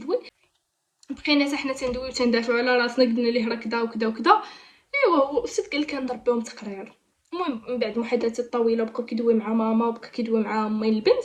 بقينا حتى حنا تندويو تندافعوا على راسنا، قلنا ليه راه كذا وكذا وكذا. ايوا هو الاستاذ قال لك كنضربهم تقرير. المهم من بعد محادثات طويله بقى كيدوي مع ماما وبقى كيدوي مع امي البنت،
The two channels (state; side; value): identical; both; correlation 1.00